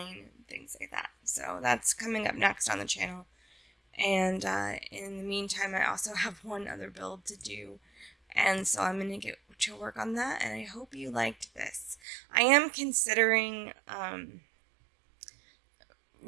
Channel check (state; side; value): drops out; left; at 12.0 s